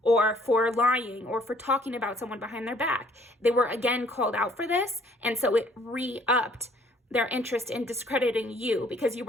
or for lying or for talking about someone behind their back. They were again called out for this, and so it re-upped their interest in discrediting you because you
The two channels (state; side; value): normal; both; correlation 0.61